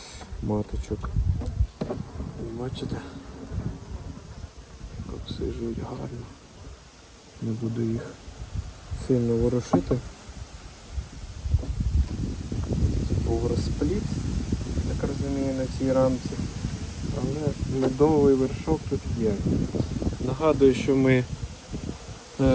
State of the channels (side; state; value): both; identical; correlation 1.00